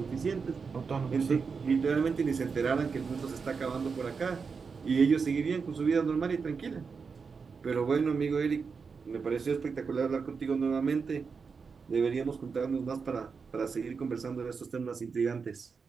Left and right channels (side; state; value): left; quieter; 5.3 dB